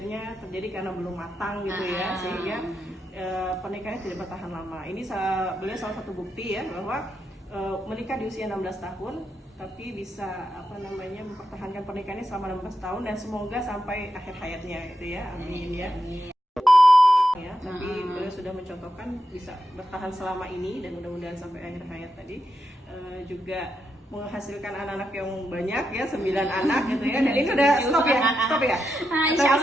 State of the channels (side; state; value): both; normal; correlation 0.85